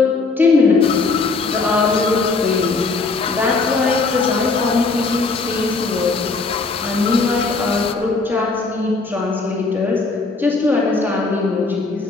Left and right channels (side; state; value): right; quieter; 3.9 dB